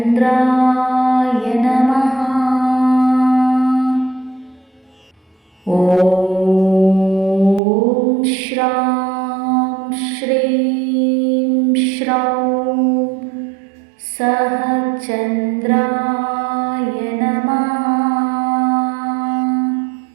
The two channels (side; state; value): left; drops out; at 7.6 s